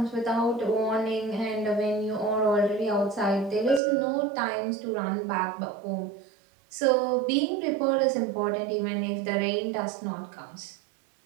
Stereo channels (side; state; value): left; drops out; at 3.8 s